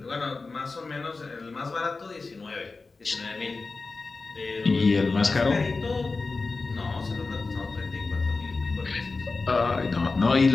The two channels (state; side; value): quieter; right; 3.9 dB